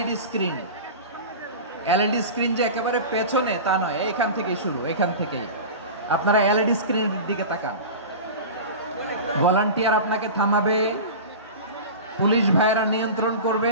স্ক্রিন, যে একেবারে পেছনে তা নয়, এইখান থেকেই শুরু, এখান থেকেই আপনারা এলইডি স্ক্রিনের দিকে তাকান। ভলান্টিয়ার আপনাকে থামাবে, পুলিশ ভাইয়েরা নিয়ন্ত্রণ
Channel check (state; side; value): inverted; both; correlation -0.31